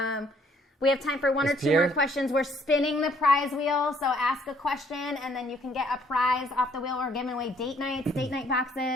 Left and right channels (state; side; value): normal; both; correlation 0.64